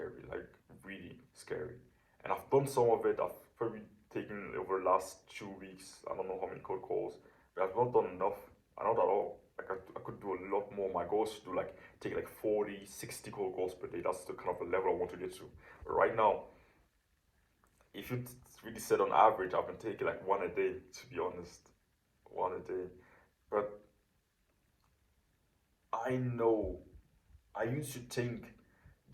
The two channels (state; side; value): identical; both; correlation 1.00